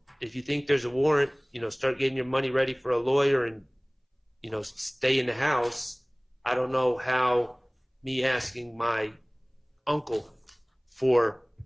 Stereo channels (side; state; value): both; identical; correlation 1.00